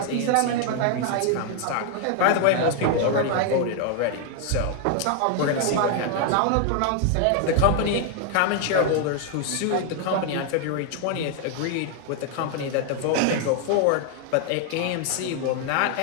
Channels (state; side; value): different; both; correlation 0.00